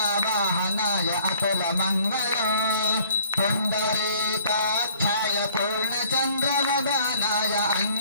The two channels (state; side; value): inverted; both; correlation -0.58